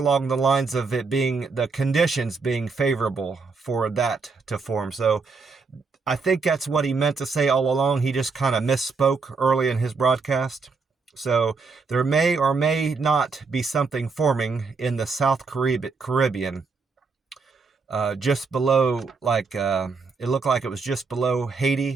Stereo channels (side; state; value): left; quieter; 4.6 dB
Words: the lines of it being the conditions being favorable for that to form. So I think that's what he meant to say all along. He just kind of misspoke early in his broadcast. So there may or may not be something forming in the South Caribbean. Just below, it looked like it was just below